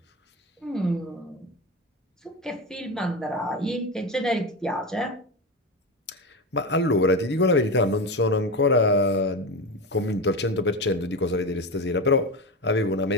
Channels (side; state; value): both; normal; correlation 0.20